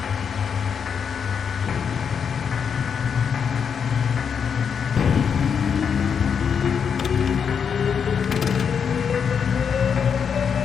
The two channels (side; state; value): right; quieter; 6.9 dB